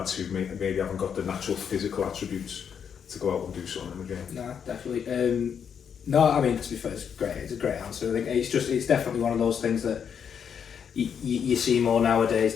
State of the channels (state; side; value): quieter; right; 7.5 dB